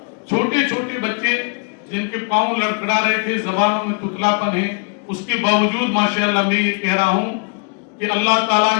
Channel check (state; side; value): quieter; right; 38.3 dB